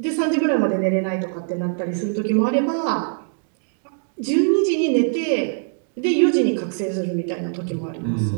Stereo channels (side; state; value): left; silent; digital silence